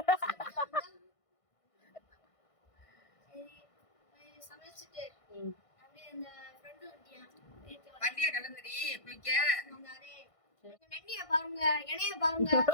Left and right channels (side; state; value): right; late; 1.5 ms